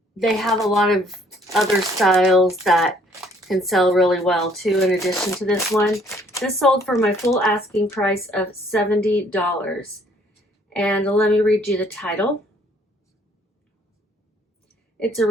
They have a lot of other styles that can sell really well too, in addition to this one. This sold for my full asking price of $70. And let me read you the title. It's a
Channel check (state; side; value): normal; both; correlation 0.62